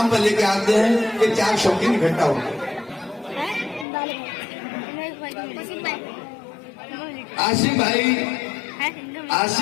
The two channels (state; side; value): drops out; right; at 3.9 s